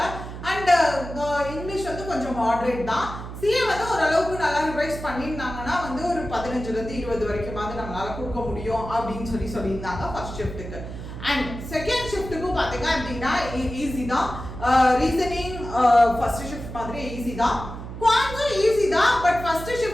அண்ட் இங்கிலீஷ் வந்து கொஞ்சம் மாடரேட் தான். சிஏ வந்து ஓரளவுக்கு நல்லா ரிவைஸ் பண்ணியிருந்தாங்கன்னா வந்து ஒரு 15லேருந்து 20 வரைக்கும் வந்து நம்மளால கொடுக்க முடியும் அப்படின்னு சொல்லியிருந்தாங்க ஃபர்ஸ்ட் ஷிஃப்ட்டுக்கு. அண்ட் செகண்ட் ஷிஃப்ட்டுக்கும் பார்த்தீங்க அப்படின்னா ஈஸி தான். ரீசனிங் ஃபர்ஸ்ட் ஷிஃப்ட் மாதிரி ஈஸி தான். குவான்ஸும் ஈஸி தான். பட் ஃபர்ஸ்ட்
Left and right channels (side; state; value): right; noise; hum, 10 dB below the sound